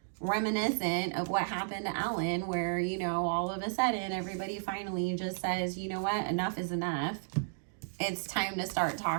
reminiscent of what happened to Ellen, where, you know, all of a sudden everybody finally just says, you know what, enough is enough. It's time to start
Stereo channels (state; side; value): silent; left; digital silence